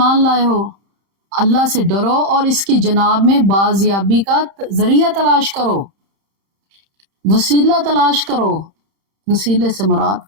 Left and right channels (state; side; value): late; left; 30 ms